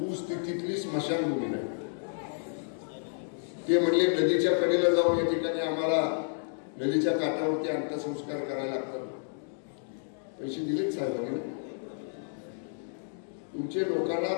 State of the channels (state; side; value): silent; right; digital silence